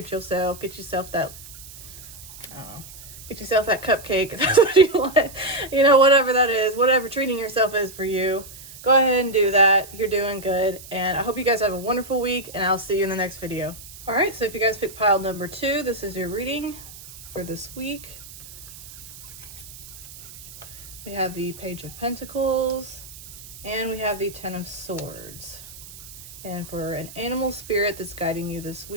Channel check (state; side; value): noise; right; hiss, 16 dB below the sound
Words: yourself. Get yourself that, get yourself that cupcake if that's what you want. Whatever that is. Whatever treating yourself is for you. Go ahead and do that. You're doing good. And I hope you guys have a wonderful week, and I'll see you in the next video. All right, so if you guys picked pile number 2, this is your reading for this week. We have the Page of Pentacles, and we have the Ten of Swords. And for an animal spirit that's guiding you this